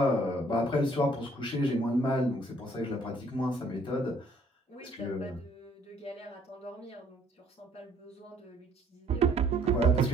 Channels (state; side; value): normal; both; correlation 0.62